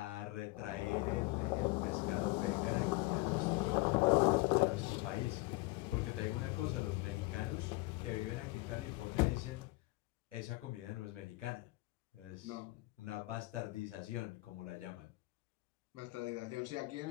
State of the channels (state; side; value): quieter; right; 22.4 dB